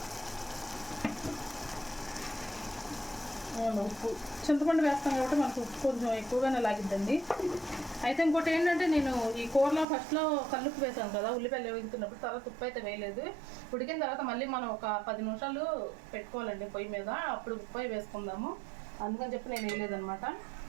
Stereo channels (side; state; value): left; drops out; at 9.9 s